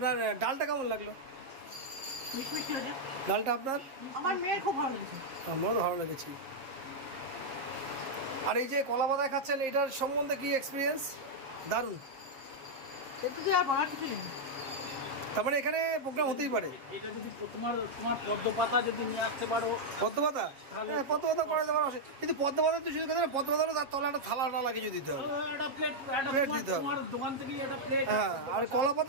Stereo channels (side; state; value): left; late; 7.5 ms